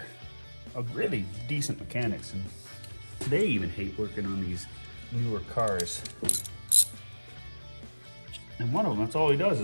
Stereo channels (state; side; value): inverted; both; correlation -1.00